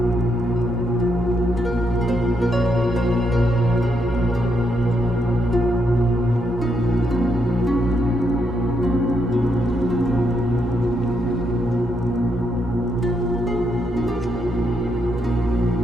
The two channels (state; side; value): normal; both; correlation 0.78